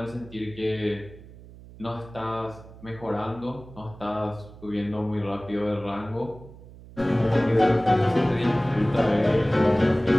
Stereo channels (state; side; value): noise; right; hum, 19 dB below the sound